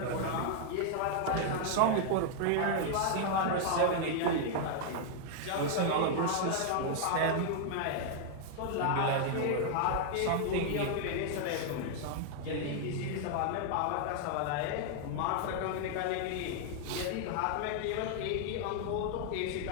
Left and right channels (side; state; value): both; different; correlation 0.00